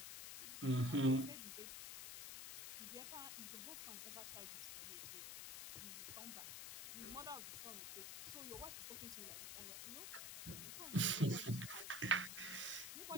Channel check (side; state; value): left; noise; hiss, 5 dB below the sound